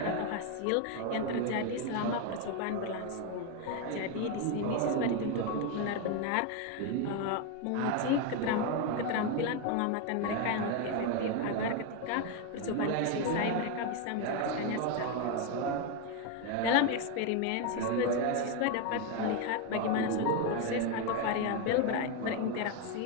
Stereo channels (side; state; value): both; different; correlation 0.02